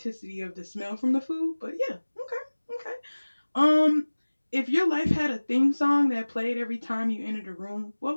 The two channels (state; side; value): inverted; both; correlation -1.00